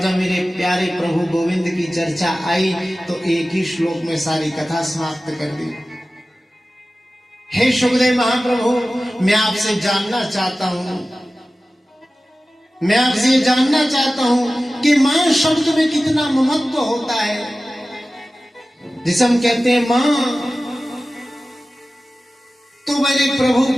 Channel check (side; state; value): both; normal; correlation 0.96